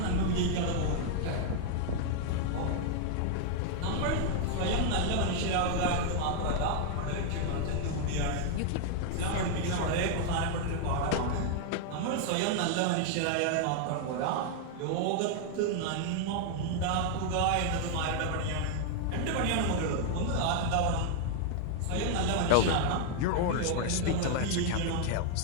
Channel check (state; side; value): different; both; correlation 0.00